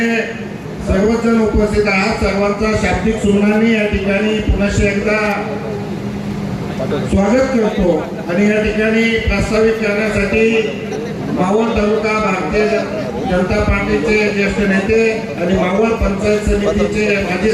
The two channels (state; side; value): identical; both; correlation 1.00